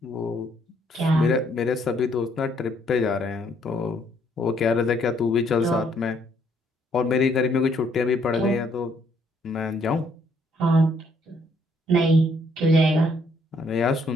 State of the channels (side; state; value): both; normal; correlation 0.68